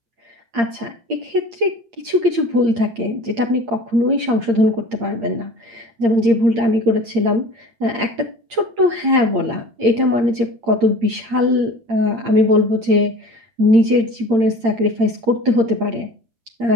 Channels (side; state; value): left; late; 8.7 ms